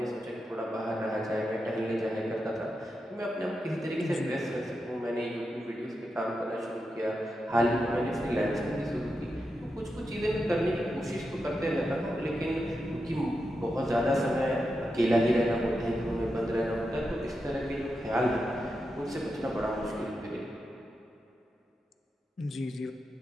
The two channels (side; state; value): both; normal; correlation 0.88